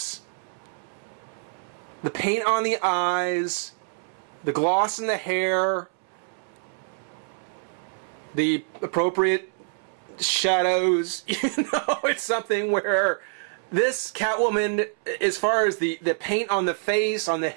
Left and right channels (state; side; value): silent; left; 61 dB below the other